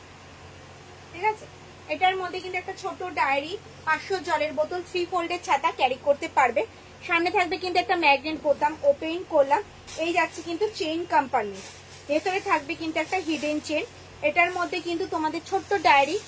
ঠিক আছে, এটার মধ্যে কিন্তু একটা ছোট ডায়েরি, 500 জলের বোতল, 3 ফোল্ডের ছাতা ক্যারি করতে পারবে। সামনে থাকবে কিন্তু একটা ম্যাগনেট বোতাম, ওপেন করলাম, এই যাচ্ছে কিন্তু চেইন কম্পার্টমেন্ট, ভেতরে থাকবে কিন্তু একটা হিডেন চেন। এটার মধ্যে কিন্তু তোমাদের ছোট্ট ডায়েরি,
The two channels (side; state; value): both; identical; correlation 1.00